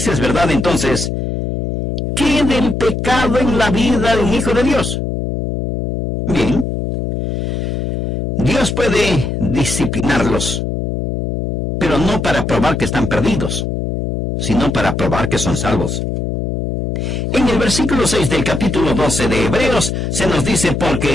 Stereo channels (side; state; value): left; noise; hum, 1 dB below the sound